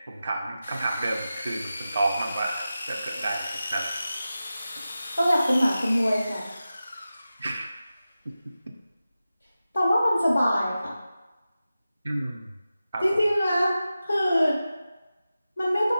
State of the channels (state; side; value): inverted; both; correlation -0.94